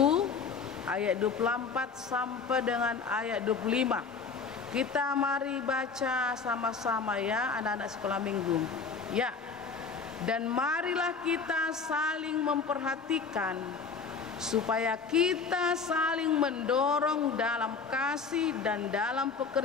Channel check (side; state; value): right; quieter; 5.2 dB